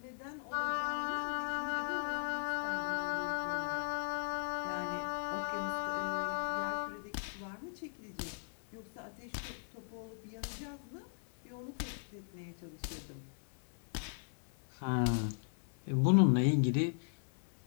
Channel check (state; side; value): silent; right; 52 dB below the other